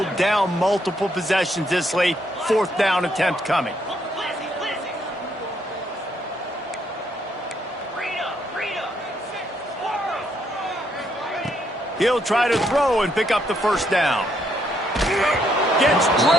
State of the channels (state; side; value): normal; both; correlation 0.73